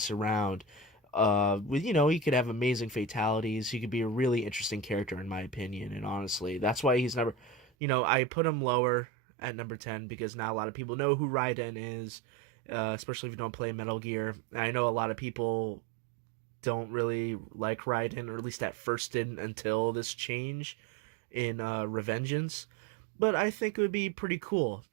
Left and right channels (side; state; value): left; drops out; at 7.7 s